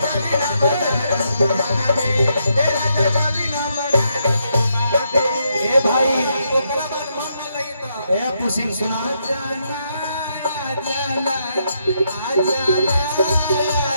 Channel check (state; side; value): inverted; both; correlation -0.77